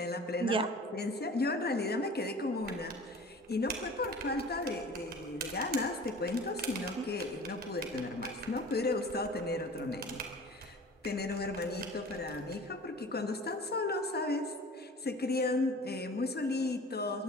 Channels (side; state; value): both; normal; correlation 0.42